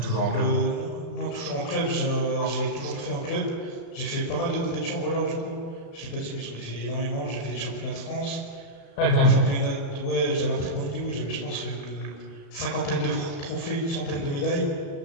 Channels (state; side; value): late; right; 35 ms